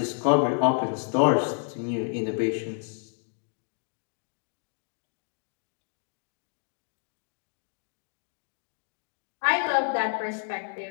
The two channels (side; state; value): right; silent; 58 dB below the other